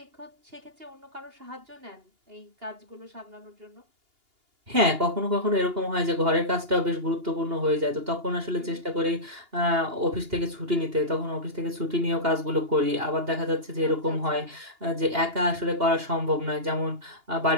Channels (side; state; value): left; late; 2.8 ms